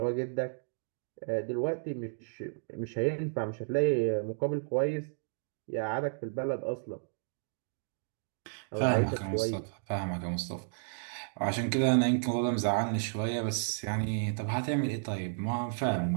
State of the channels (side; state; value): left; silent; digital silence